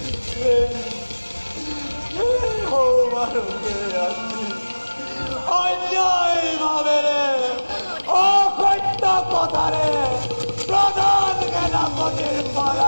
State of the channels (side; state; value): both; inverted; correlation -1.00